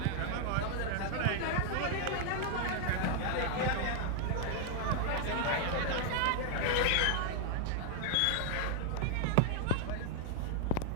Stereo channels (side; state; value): both; different; correlation 0.00